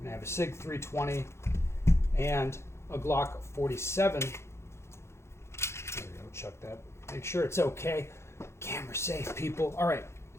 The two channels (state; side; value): late; right; 0.13 ms